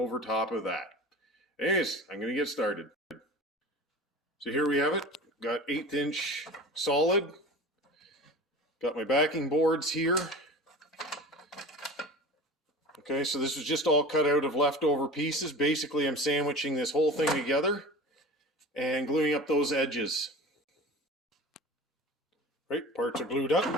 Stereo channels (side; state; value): both; normal; correlation 0.36